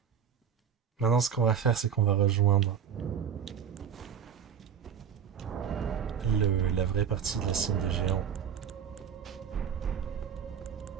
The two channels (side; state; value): left; quieter; 8.0 dB